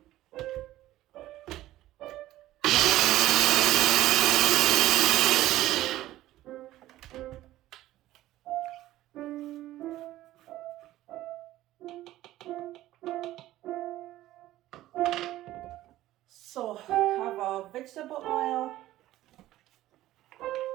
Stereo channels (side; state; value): left; quieter; 15.1 dB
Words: So have our vegetable oil.